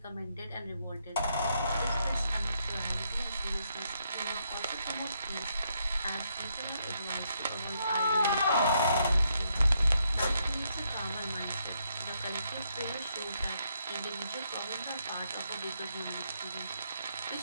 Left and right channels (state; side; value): inverted; both; correlation -0.76